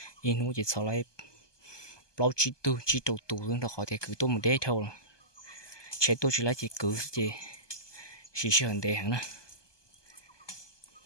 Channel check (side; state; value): right; late; 1.2 ms